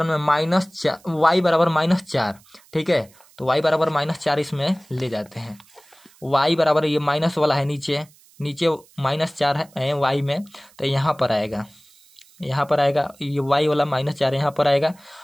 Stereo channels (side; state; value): right; noise; hiss, 28 dB below the sound